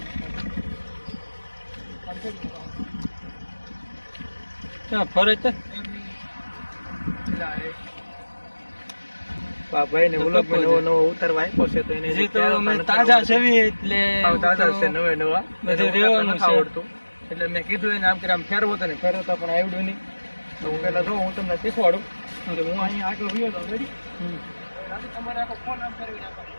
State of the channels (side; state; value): both; inverted; correlation -1.00